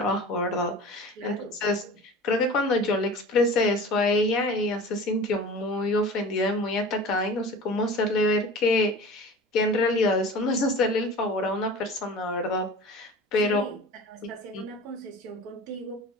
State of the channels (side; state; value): both; normal; correlation 0.38